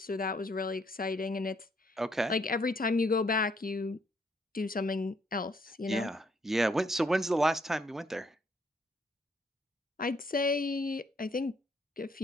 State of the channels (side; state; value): both; normal; correlation 0.70